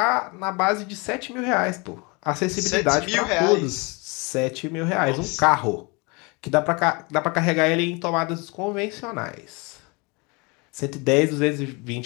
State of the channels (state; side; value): quieter; right; 28.8 dB